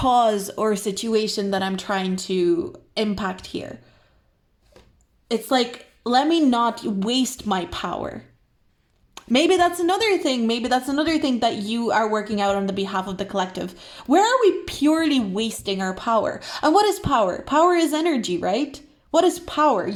or situation that I'm trying to impact here. It's like, let me not waste my power. Maybe that's another thing. Maybe that's another thing that you are working out on the behalf of the collective. Where are we purely wasting our power? And what is power? Power is energy, right? What is power?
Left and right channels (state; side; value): identical; both; correlation 1.00